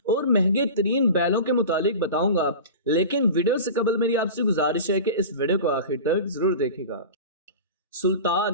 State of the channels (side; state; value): both; inverted; correlation -0.32